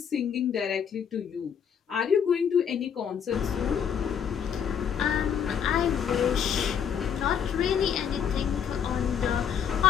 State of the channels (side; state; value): right; quieter; 8.0 dB